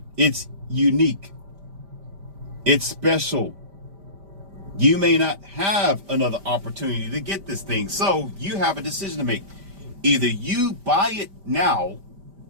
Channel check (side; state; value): left; late; 5.1 ms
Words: it's unique. It's special. You may not have another opportunity to get this thing. So you have a decision to make. Either you buy it now